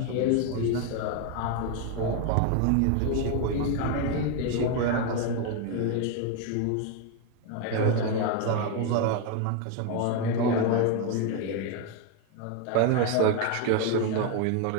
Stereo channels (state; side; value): different; both; correlation 0.01